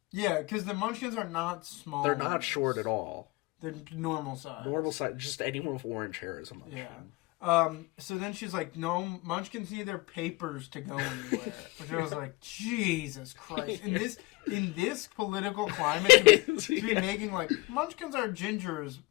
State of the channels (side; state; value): right; quieter; 23.2 dB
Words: Yeah, because the munchkins are not small. They're not short at all. They're normal size. Normal size. Just anyone with orange hair is a munchkin. Yeah. So then she's like, no, munchkins need their papers to go anywhere. Which I was like, Jesus Christ. In this political climate, to be making like, munchkins are gingers,